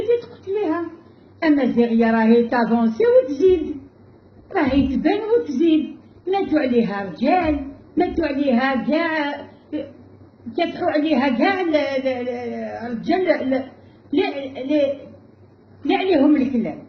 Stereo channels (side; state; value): both; identical; correlation 1.00